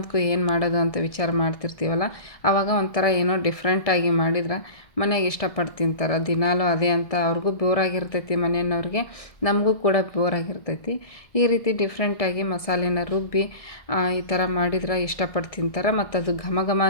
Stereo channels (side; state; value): right; late; 1.7 ms